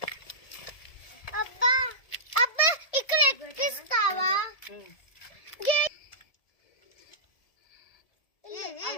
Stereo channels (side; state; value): right; late; 1.7 ms